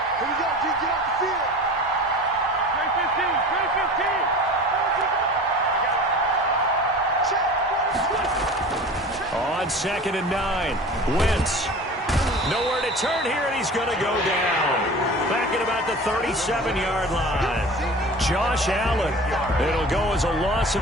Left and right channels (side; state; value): both; normal; correlation 0.38